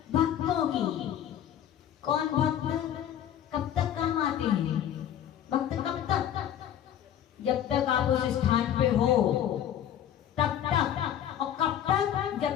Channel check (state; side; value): quieter; right; 10.3 dB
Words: भक्तों की। कौन भक्त? कब तक काम आते हैं भक्त? कब तक? जब तक आप उस स्थान पे हो तब तक, और कब तक?